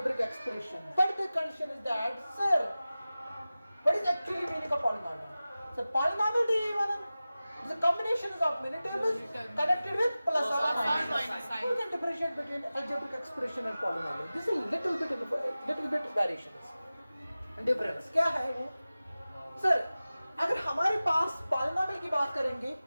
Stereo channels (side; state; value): both; inverted; correlation -0.96